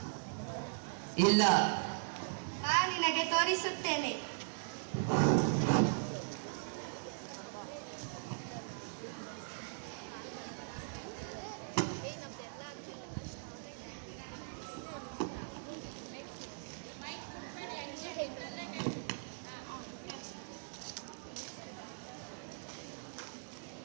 ಇಲ್ಲ. ನಿನಗೆ ತೋರಿಸುತ್ತೇನೆ.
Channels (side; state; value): left; silent; digital silence